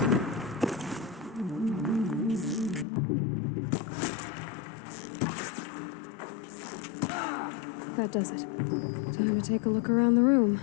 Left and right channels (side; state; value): right; drops out; at 2.9 s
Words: That does it. Time to take a look around the room.